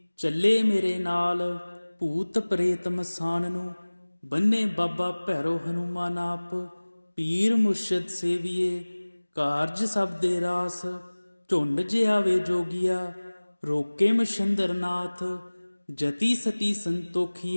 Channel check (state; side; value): inverted; both; correlation -1.00